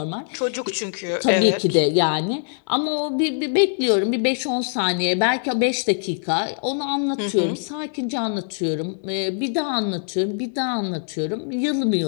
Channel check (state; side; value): silent; right; 63 dB below the other